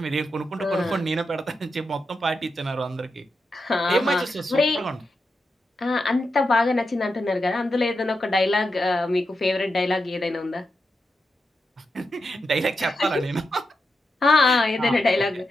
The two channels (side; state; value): both; normal; correlation 0.87